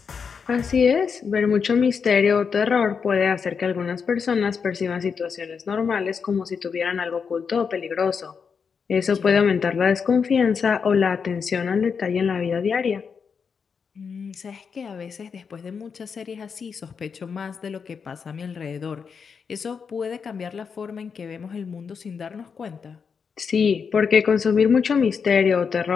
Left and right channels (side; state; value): right; quieter; 6.1 dB